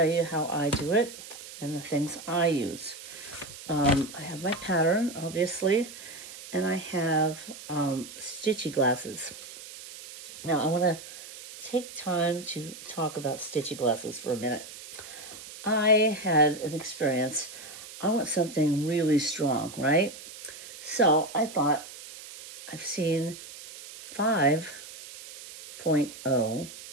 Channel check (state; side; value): noise; right; hiss, 14 dB below the sound